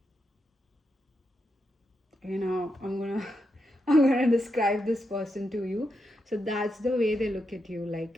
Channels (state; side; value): normal; both; correlation 0.84